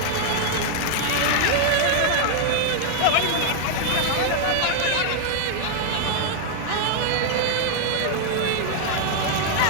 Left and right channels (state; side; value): different; both; correlation 0.00